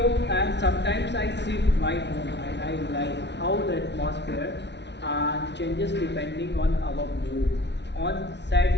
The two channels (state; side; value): late; right; 0.51 ms